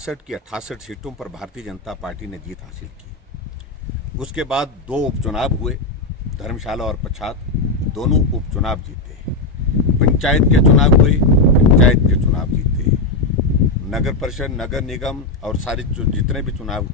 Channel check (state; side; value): quieter; right; 3.4 dB